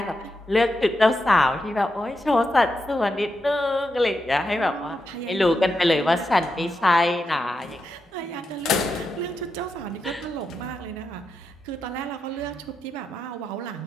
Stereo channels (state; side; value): normal; both; correlation 0.86